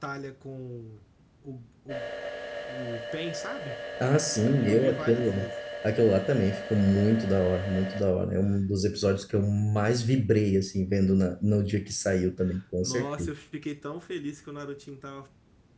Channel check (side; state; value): both; identical; correlation 1.00